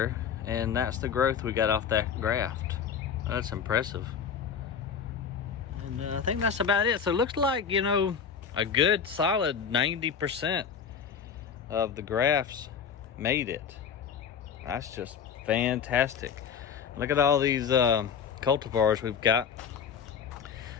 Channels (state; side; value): quieter; right; 7.1 dB